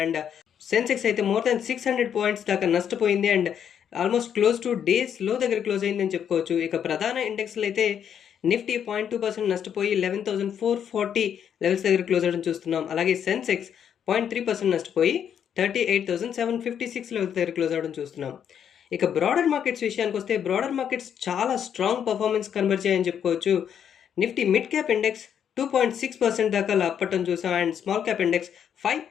అండ్ సెన్సెక్స్ అయితే మోర్ దాన్ 600 పాయింట్స్ దాకా నష్టపోయింది and almost close two days లో దగ్గర క్లోజ్ అయిందని చెప్పుకోవచ్చు. ఇక ప్రధాన ఇండెక్స్లు అయితే నిఫ్టీ 0.2% నష్టపోయి 11,440 లెవెల్స్ దగ్గర క్లోజ్ అవ్వడం చూస్తున్నాం. అలాగే సెన్సెక్స్ 0.3% నష్టపోయి 38,756 లెవెల్స్ దగ్గర క్లోజ్ అవ్వడం చూస్తున్నాం. ఇక బ్రాడర్ మార్కెట్స్ విషయానికి వస్తే బ్రాడర్ మార్కెట్స్ చాలా స్ట్రాంగ్ పర్ఫార్మెన్స్ కనబరిచాయని చెప్పుకోవచ్చు. నిఫ్టీ మిడ్ క్యాప్ ఇండెక్స్ 2.6% దాకా లాభపడటం చూసాం అండ్ స్మాల్ క్యాప్ ఇండెక్స్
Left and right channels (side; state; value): right; quieter; 8.6 dB